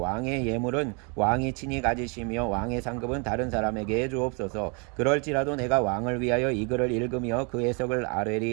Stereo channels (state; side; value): quieter; left; 34.3 dB